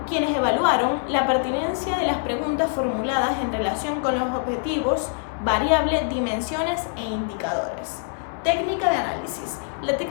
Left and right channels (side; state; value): right; silent; 62 dB below the other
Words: quienes evaluaron la pertinencia de las preguntas formuladas en relación con los objetivos, variables, dimensiones e indicadores. Técnica de análisis. La